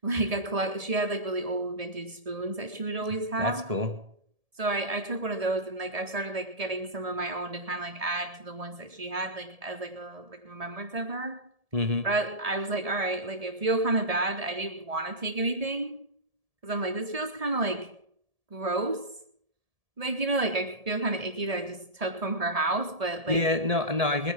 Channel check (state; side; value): late; left; 1.7 ms